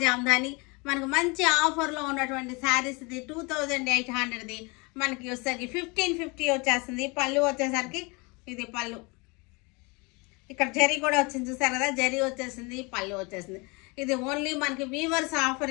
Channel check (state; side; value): quieter; right; 28.2 dB